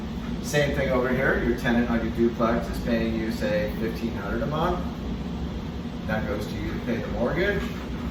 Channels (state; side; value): identical; both; correlation 1.00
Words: Same thing over here, your tenant on your duplex is paying you, say, $1,500 a month. That goes to you to pay the mortgage,